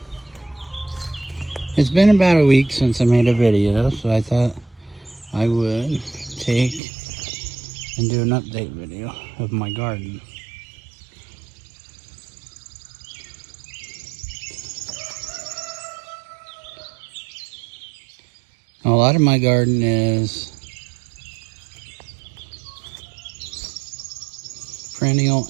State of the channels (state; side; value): drops out; left; at 6.8 s